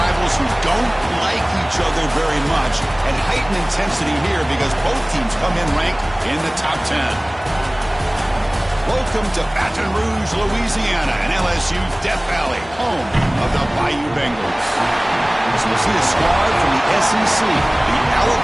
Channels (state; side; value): noise; left; hum, 21 dB below the sound